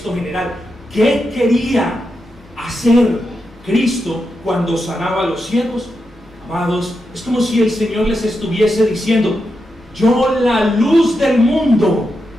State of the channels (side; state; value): both; normal; correlation 0.87